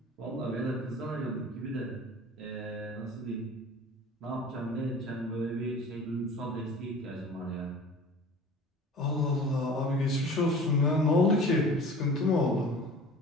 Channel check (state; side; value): normal; both; correlation 0.42